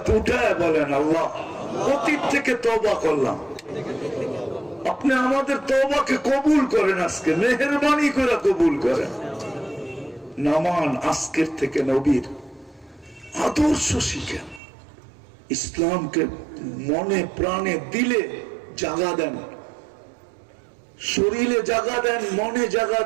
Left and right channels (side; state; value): left; drops out; at 14.6 s